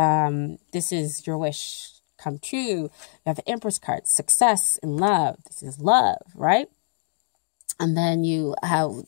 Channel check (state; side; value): silent; right; digital silence